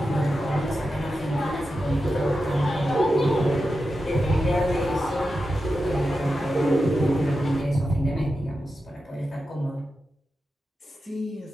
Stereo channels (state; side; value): normal; both; correlation 0.90